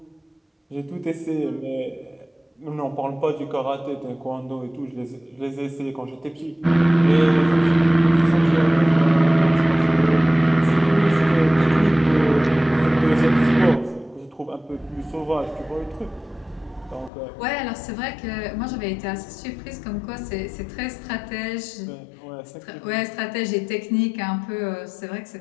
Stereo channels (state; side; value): drops out; right; at 17.1 s